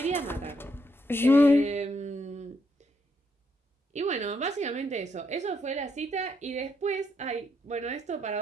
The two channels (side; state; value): both; normal; correlation 0.77